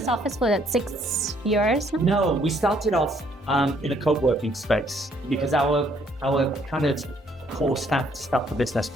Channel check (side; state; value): both; normal; correlation 0.66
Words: office for 6 years now? No, we started off in a co-working space because our kind of core staff for business